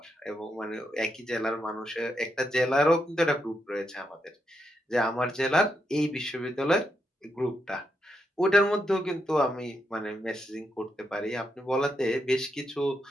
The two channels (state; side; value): normal; both; correlation 0.82